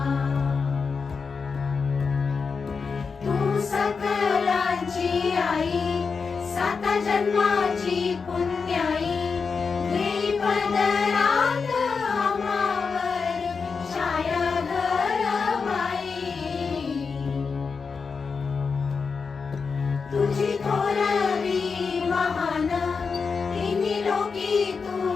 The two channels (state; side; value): quieter; right; 5.2 dB